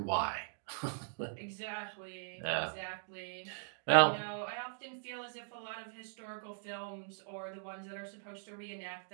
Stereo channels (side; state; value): left; silent; digital silence